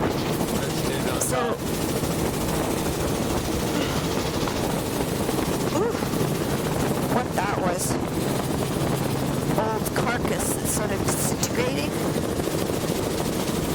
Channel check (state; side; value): identical; both; correlation 1.00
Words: Let's do no So, top. ooh, what that was. Old carcass that's sort of disintegrating,